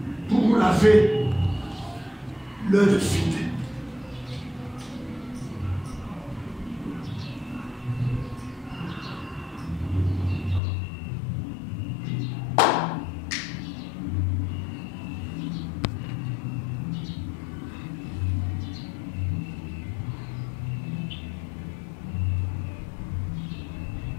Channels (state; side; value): drops out; right; at 10.6 s